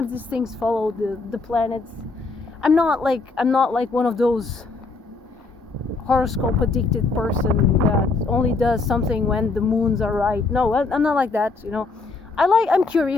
these things follow the planets. I'm not like one of those horoscope addicted person that only does something when the moons are right. No, I'm not like that. I'm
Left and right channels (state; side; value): quieter; right; 3.9 dB